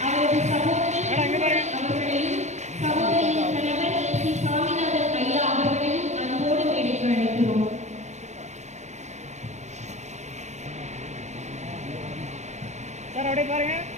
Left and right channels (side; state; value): left; late; 0.33 ms